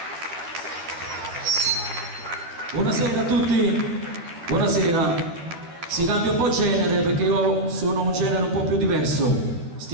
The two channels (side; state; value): left; late; 12 ms